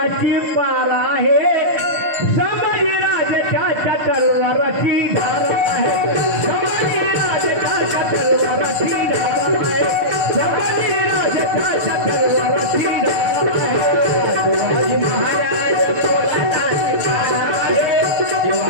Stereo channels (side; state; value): left; late; 6.7 ms